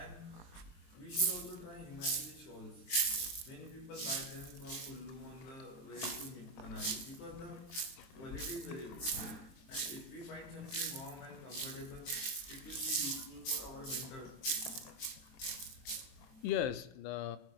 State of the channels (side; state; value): right; late; 22 ms